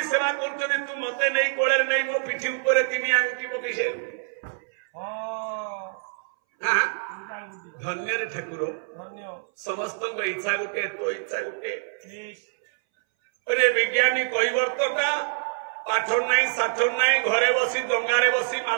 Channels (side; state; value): left; silent; 61 dB below the other